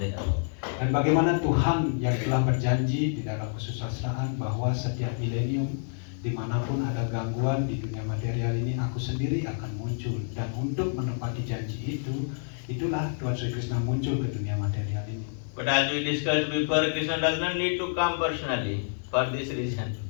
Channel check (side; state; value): right; silent; digital silence